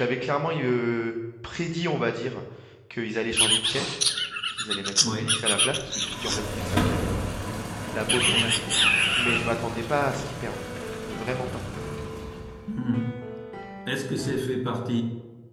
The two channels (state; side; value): identical; both; correlation 1.00